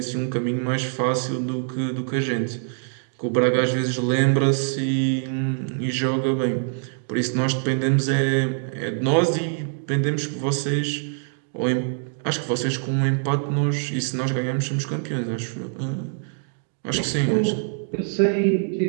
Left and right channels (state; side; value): silent; left; 63 dB below the other